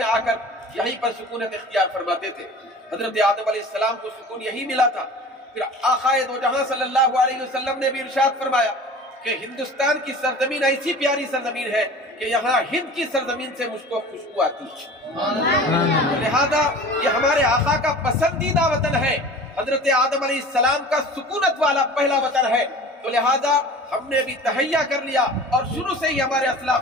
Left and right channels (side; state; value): both; normal; correlation 0.40